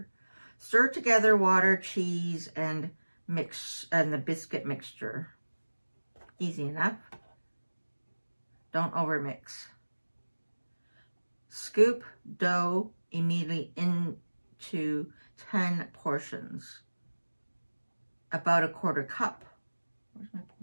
Stir together water, cheese, and the biscuit mixture. Easy enough. Don't overmix. Scoop dough immediately into 10 portions. About a quarter cup. Where's my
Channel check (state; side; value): inverted; both; correlation -1.00